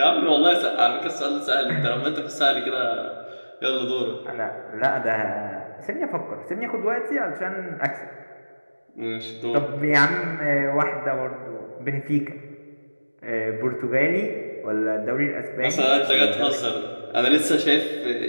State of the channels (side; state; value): both; inverted; correlation -1.00